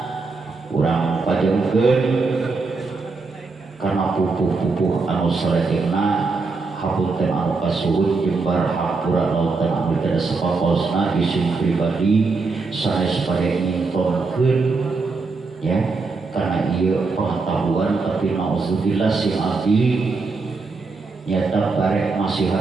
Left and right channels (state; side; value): quieter; left; 4.1 dB